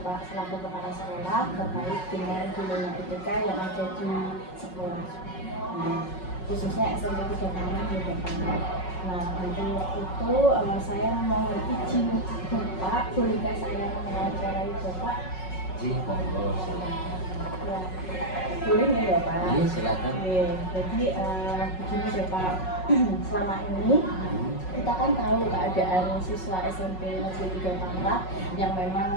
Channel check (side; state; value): right; late; 5.4 ms